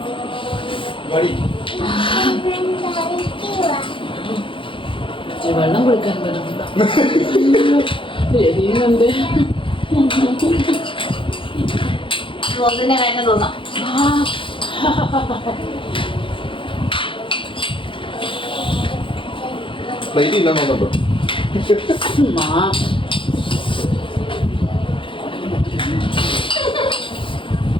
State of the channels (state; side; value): late; right; 0.25 ms